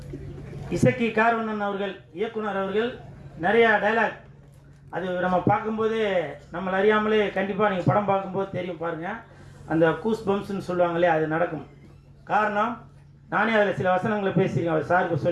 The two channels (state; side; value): identical; both; correlation 1.00